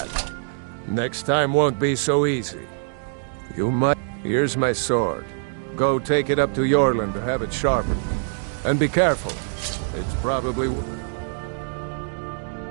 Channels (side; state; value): left; silent; digital silence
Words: Next time won't be so easy. You might... Here's my sword. Go take it up to Yorland to have it sharpened. And be careful. It's probably...